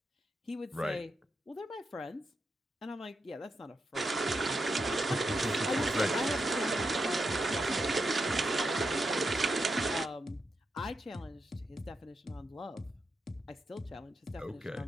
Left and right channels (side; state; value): both; normal; correlation 0.85